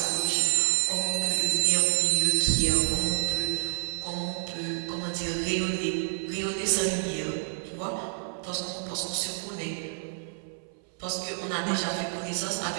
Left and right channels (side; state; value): left; silent; 59 dB below the other